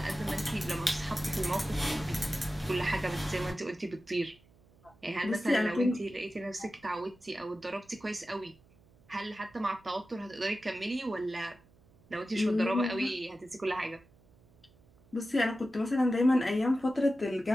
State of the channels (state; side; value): noise; right; hum, 29 dB below the sound